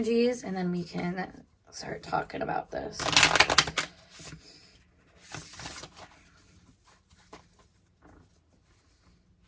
and then we can start talking about this.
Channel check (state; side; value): identical; both; correlation 1.00